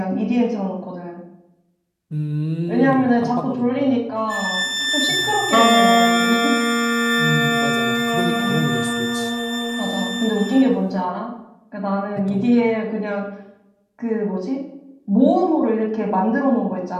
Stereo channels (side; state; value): both; identical; correlation 1.00